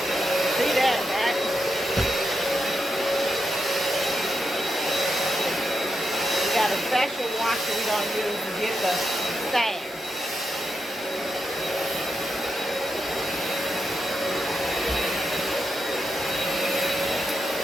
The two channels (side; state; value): both; normal; correlation 0.85